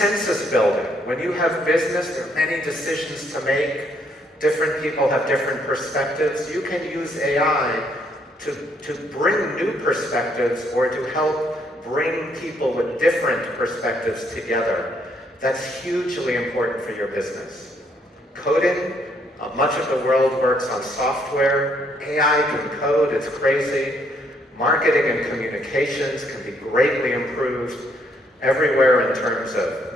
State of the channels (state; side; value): normal; both; correlation 0.70